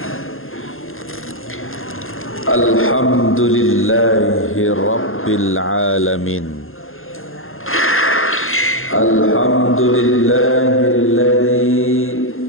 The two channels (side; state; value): right; late; 0.60 ms